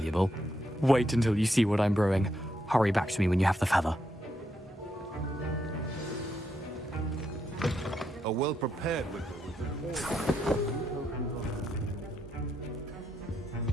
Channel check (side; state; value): both; normal; correlation 0.80